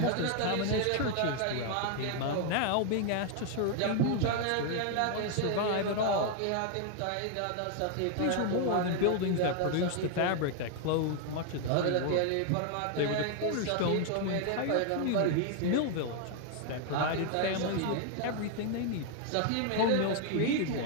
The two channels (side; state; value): both; different; correlation 0.00